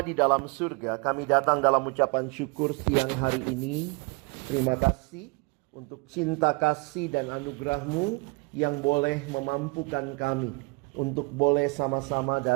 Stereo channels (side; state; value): left; quieter; 29.5 dB